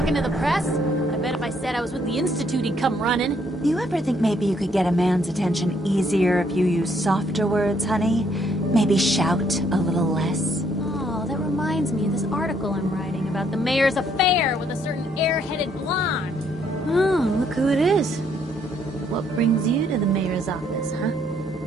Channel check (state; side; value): normal; both; correlation 0.69